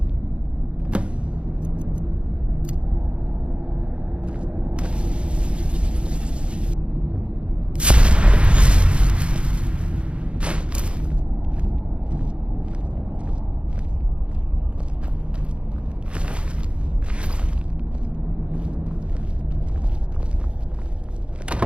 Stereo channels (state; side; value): late; left; 0.058 ms